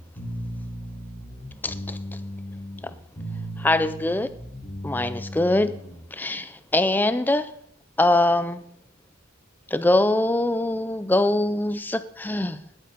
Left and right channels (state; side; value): normal; both; correlation 0.79